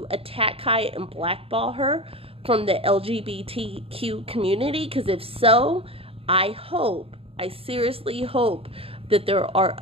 attack Kaya and blackball her from the LGBTQ community? Because if so, I seriously hope that there are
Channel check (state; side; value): late; left; 0.27 ms